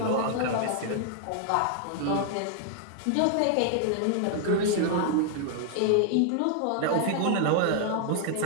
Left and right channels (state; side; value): different; both; correlation 0.00